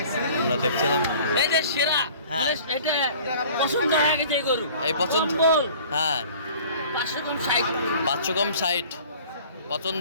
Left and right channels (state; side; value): inverted; both; correlation -0.48